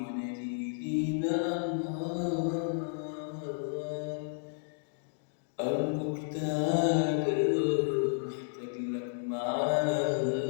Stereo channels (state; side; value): silent; right; digital silence